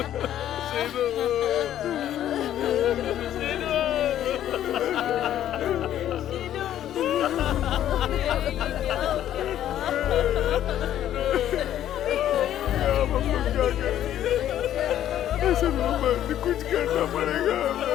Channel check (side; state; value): right; quieter; 11.5 dB